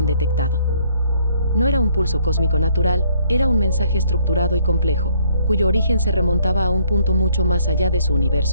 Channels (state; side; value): inverted; both; correlation -0.65